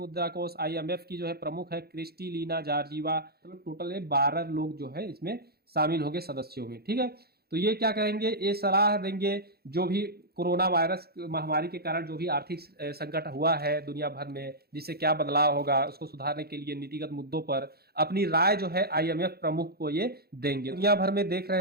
कोष IMF की जो है प्रमुख है क्रिस्टलिना जॉर्जिवा। मतलब टोटल 12 लोग जो है इसमें शामिल होंगे सदस्यों में, ठीक है। तो ये क्या कहेंगे, ये सलाह देंगे जो भी कोरोना वायरस महामारी के कारण जो भी आर्थिक संकट हुआ है दुनिया भर में, जिससे क्या बदलाव होगा उसको सुधारने के लिए नीतिगत मुद्दों पर अपनी राय जो है IMF प्रमुख को ये देंगे। दुनिया भर में देख रहे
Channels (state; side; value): late; left; 0.46 ms